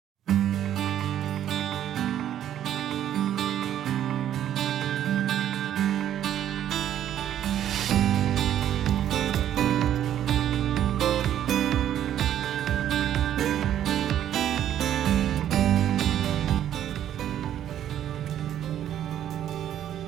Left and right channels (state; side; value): quieter; left; 10.9 dB